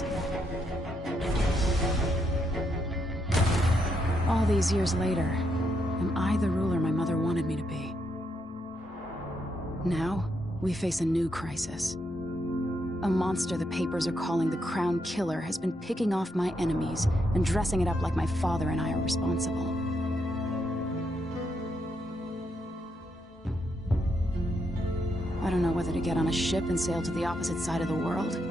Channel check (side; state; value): both; normal; correlation 0.79